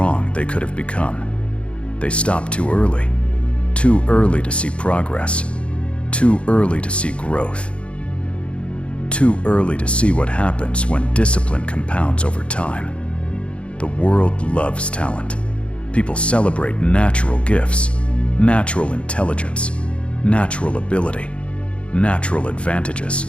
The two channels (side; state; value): right; late; 0.060 ms